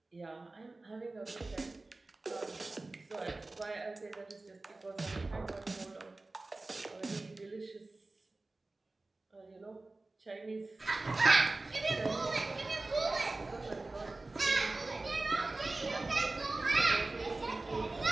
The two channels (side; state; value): left; quieter; 3.2 dB